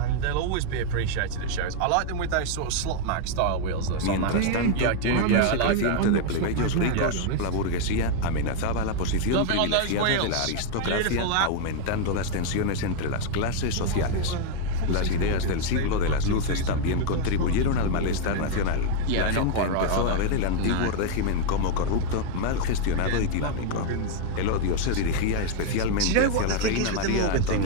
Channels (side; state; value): both; different; correlation 0.00